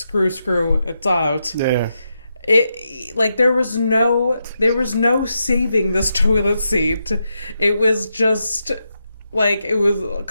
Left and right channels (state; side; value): inverted; both; correlation -0.85